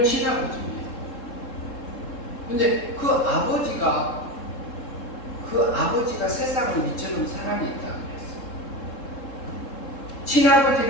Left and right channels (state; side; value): late; right; 3.7 ms